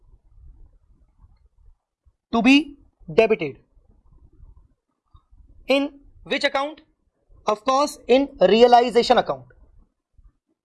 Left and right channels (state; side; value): identical; both; correlation 1.00